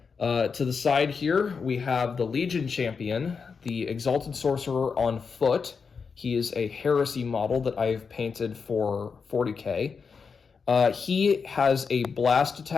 To the side here, we have the Legion Champion, the Exalted Sorcerer on foot. He is a Heresy model that I've painted for 40k. He has a blast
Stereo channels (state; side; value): quieter; right; 5.5 dB